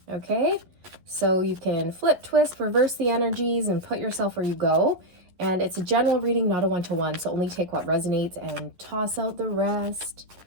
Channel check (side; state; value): left; late; 11 ms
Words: Okay? So you can flip, twist, reverse the energies, and put yourself where you go. And it's a general reading, not a one-to-one, so only take what resonates and toss out the rest.